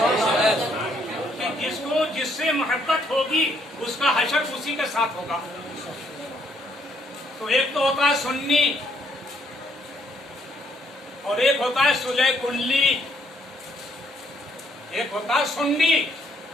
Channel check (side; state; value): both; normal; correlation 0.69